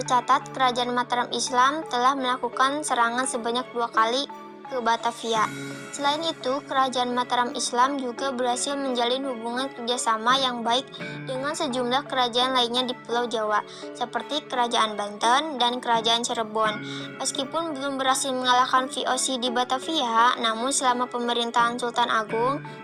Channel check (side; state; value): both; identical; correlation 1.00